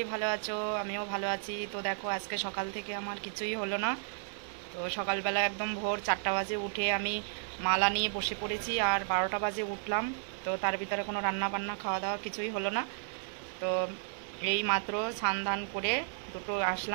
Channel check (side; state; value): left; silent; 56 dB below the other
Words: ভালো আছো, আমিও ভালো আছি। তো দেখো আজকে সকাল থেকে আমার কিছুই হলো না। তো সকালবেলা একদম ভোর 4টা বাজে উঠে আমি মালা নিয়ে বসে পড়েছি, আর 12টা বাজে উঠলাম। তো তার ভিতরে কোনো রান্না বান্না খাওয়া দাওয়া কিছুই হলো না। তো এই মাত্র স্নান ধান করে দুটো